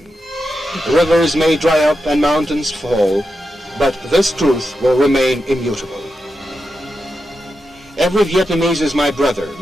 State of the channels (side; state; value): both; normal; correlation 0.88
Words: Rivers may dry up and mountains fall, but this truth will remain immutable. Every Vietnamese is my brother,